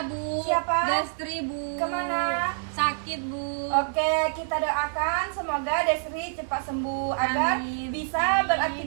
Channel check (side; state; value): left; silent; 60 dB below the other